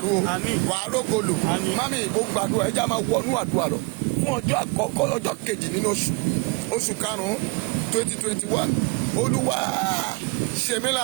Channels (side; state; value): left; quieter; 28.9 dB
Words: o wàá rógòlò. Mami mo gbàdúrà ẹja máa wọnú àdúrà lọ fún ọjọ́ àkọ́kọ́ ọjọ́ kejì nínú oṣù karùn-ún 2021 Olúwa ṣe mí